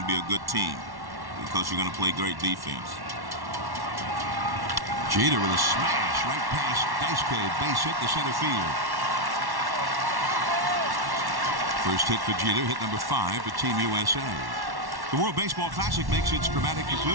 be a good team because you're going to play great defense. Jeter with a smash right past Daisuke, base hit to center field. First hit for Jeter, hit number 5 for Team USA. The World Baseball Classic makes its dramatic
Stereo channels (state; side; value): late; left; 1.1 ms